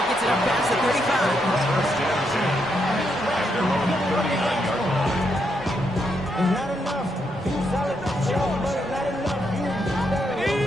gets it up past the 35. It's not enough. Solid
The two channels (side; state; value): both; normal; correlation 0.79